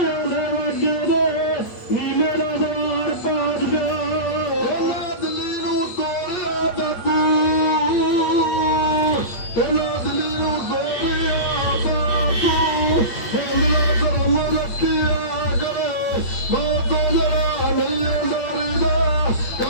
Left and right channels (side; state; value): right; late; 8.8 ms